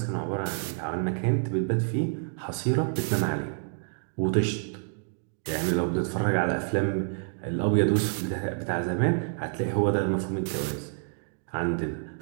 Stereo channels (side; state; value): left; silent; 59 dB below the other